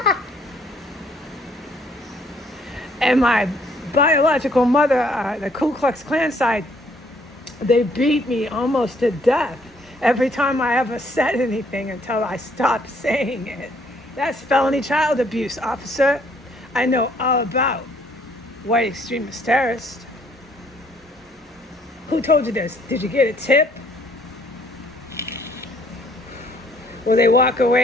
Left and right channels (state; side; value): normal; both; correlation 0.64